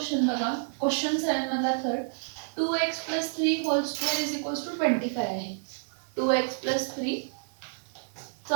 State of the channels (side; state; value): left; silent; 59 dB below the other